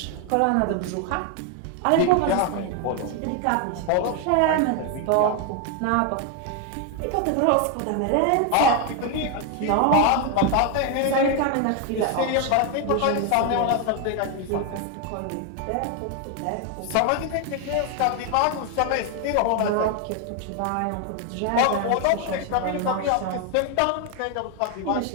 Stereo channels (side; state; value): both; different; correlation 0.01